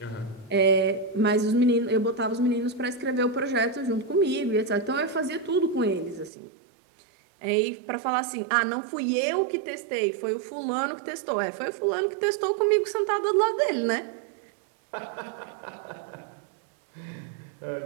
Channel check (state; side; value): drops out; left; at 6.3 s